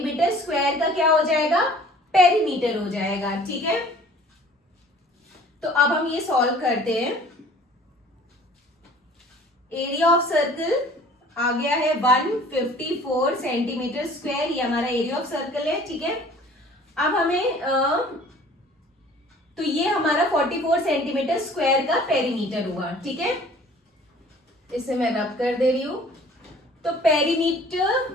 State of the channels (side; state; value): both; normal; correlation 0.50